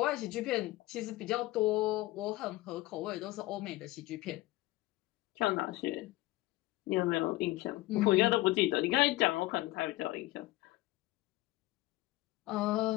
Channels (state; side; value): quieter; right; 18.6 dB